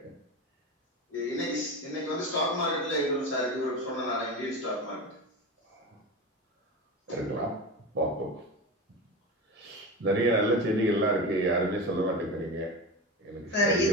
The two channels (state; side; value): normal; both; correlation 0.25